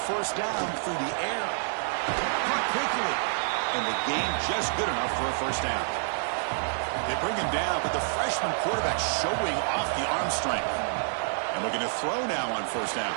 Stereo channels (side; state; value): left; silent; digital silence